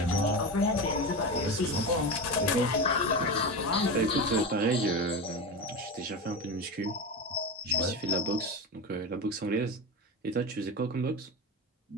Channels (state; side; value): normal; both; correlation 0.22